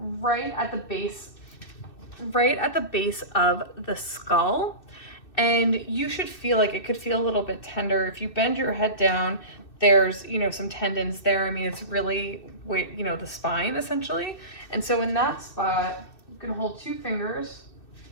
right at the base of the skull. And you should feel like it could feel a little bit tender. If you bend your head down, there's, some tendons there. I mean, it's really, the spine essentially. And so in that spot, you can hold 2 fingers.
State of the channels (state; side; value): late; right; 2.6 ms